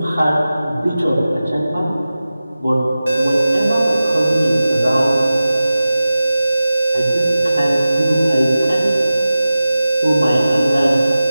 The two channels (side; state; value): both; inverted; correlation -0.94